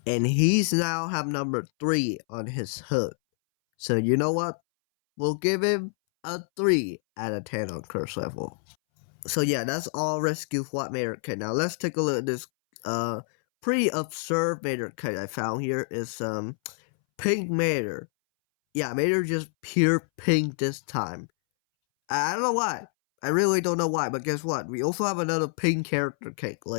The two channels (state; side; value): silent; right; 60 dB below the other